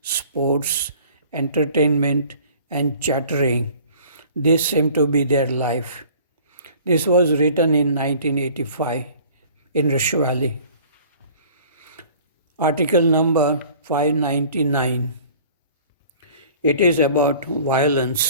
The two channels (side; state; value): both; inverted; correlation -0.49